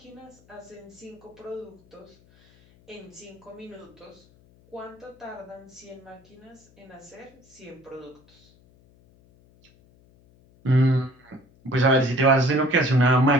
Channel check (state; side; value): noise; left; hum, 29 dB below the sound